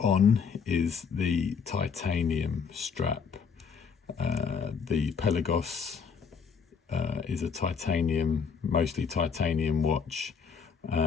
is the titanium strap. The Pelagos is a mostly titanium watch.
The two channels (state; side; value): quieter; right; 6.1 dB